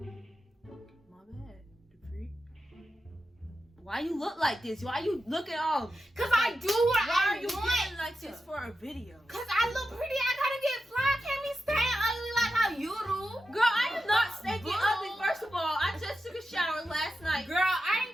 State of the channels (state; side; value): normal; both; correlation 0.90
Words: bad. The freak. Why you look like this? Why you looking all? Cause I do what Why I are you want. getting like this for a video? Cause I look pretty. I gotta get fly. I can't be staying ugly like how you do. Girl, I am not stinking ugly. First of all, I just took a shower last night. Girl, I